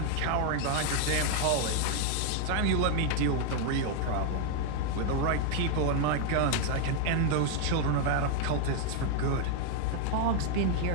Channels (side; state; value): both; different; correlation 0.00